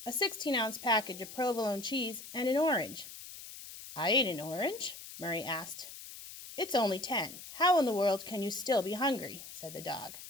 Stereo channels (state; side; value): noise; left; hiss, 13 dB below the sound